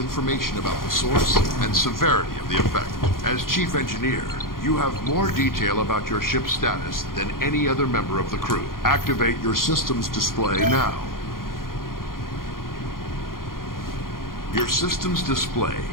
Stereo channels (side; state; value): right; late; 0.91 ms